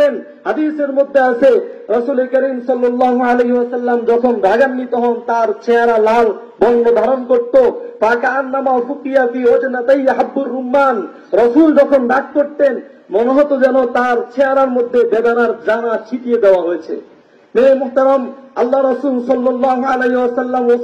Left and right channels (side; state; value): both; identical; correlation 1.00